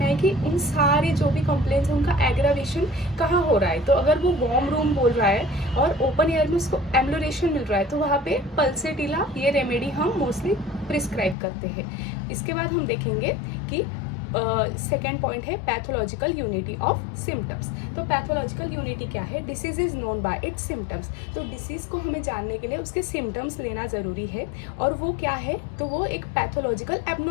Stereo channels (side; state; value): right; drops out; at 11.4 s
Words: है कि उन सारे जो भी कंप्लेंट्स हैं उनका एग्रावेशन कहाँ हो रहा है. तो अगर वो वार्म रूम बोल रहा है और ओपन एयर में उसको एमिलोरेशन मिल रहा है तो वहाँ पे पल्सेटिला ये रेमेडी हम मोस्टली प्रिस्क्राइब करते हैं. इसके बाद हम देखेंगे कि सेकेंड पॉइंट है पैथोलॉजिकल यूनिटी ऑफ सिम्टम्स. तो पैथोलॉजिकल यूनिटी क्या है? Disease is known by it's symptoms. तो डिसीज को हमें जानने के लिए उसके सिम्टम्स लेना ज़रूरी है. और वो क्या है? तो वो एक पैथोलॉजिकल